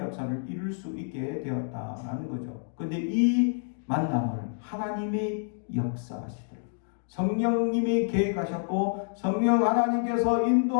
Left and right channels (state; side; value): silent; right; digital silence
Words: 이룰 수 있게 되었다라는 거죠. 그런데 이 만남을 하나님이 역사하시더라고요. 성령님이 계획하셨고 성령 하나님께서